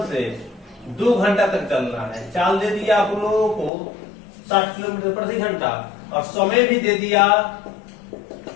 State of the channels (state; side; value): drops out; right; at 3.7 s